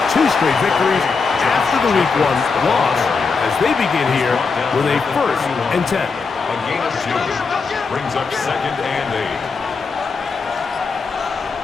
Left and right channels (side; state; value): right; quieter; 4.8 dB